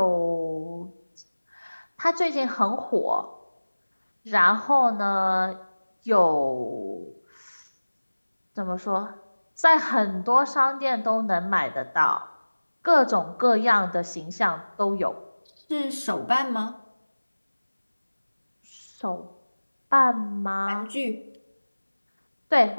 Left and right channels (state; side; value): inverted; both; correlation -1.00